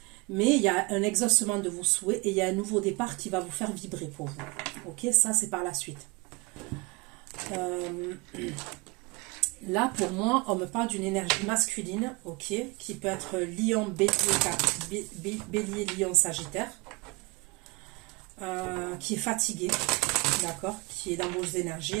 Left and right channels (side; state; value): left; quieter; 27.4 dB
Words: Mais il y a un exaucement de vos souhaits et il y a un nouveau départ qui va vous faire vibrer pour vous. Ok, ça c'est par la suite. Là, pour moi, on me parle d'une énergie masculine, ok, qui peut être lion, bélier, lion, sagittaire, qui est fatigué, d'accord, qui est dans vos